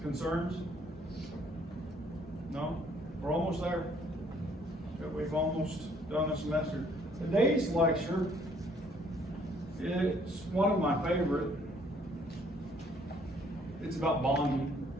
Concerns? No? We're almost there. We've almost done a semester. Today's lecture, it's one of my favorite. It's about bonding.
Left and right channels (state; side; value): normal; both; correlation 0.63